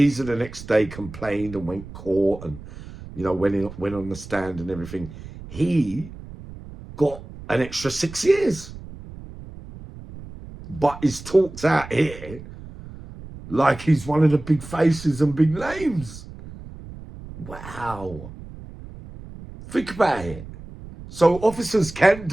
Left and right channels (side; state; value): right; noise; rumble, 15 dB below the sound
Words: the next day complained and went court, and, you know, went on the stand and everything. He got an extra 6 years, but he's talked out here like he's one of the big faces and big names. Wow. Think about it. So officers can